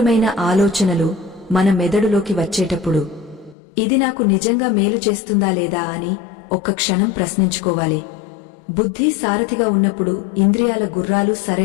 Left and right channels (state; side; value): drops out; right; at 3.6 s